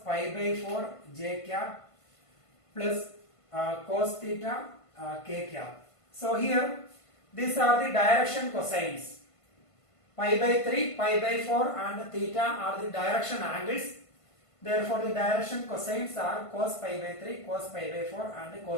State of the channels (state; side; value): late; right; 1.5 ms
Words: by 4 j cap plus cos theta k cap. So here these are the direction cosines. Pi by 3, pi by 4 and theta are the direction angles. Therefore the direction cosines are cos pi by 3, cos pi by 4 and